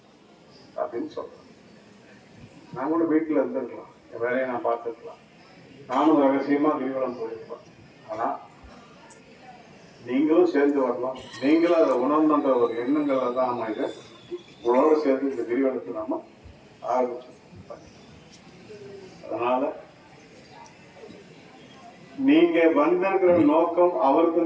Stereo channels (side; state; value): both; identical; correlation 1.00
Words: அப்படின்னு சொல்றேன். நான் கூட வீட்டுல இருந்திருக்கலாம், என் வேலையை நான் பார்த்துருக்கலாம், நானும் ரகசியமா கிரிவலம் போயிருப்பேன். ஆனா நீங்களும் சேர்ந்து வரலாம், நீங்களும் அதை உணர்ந்த ஒரு எண்ணங்கள் தான் நம்ம இதை உங்களோட சேர்ந்து இந்த கிரிவலத்தை நாம ஆரம்பிச்சோம். அதனால நீங்க வந்திருக்கிற நோக்கம்